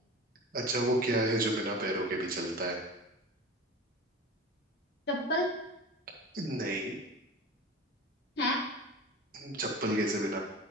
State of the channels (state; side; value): normal; both; correlation 0.34